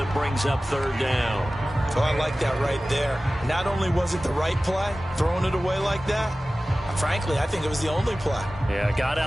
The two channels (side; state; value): both; normal; correlation 0.96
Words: brings up 3rd down. Oh, I like that right there. Not only was it the right play, throwing it away like that, frankly, I think it was the only play. Yeah, got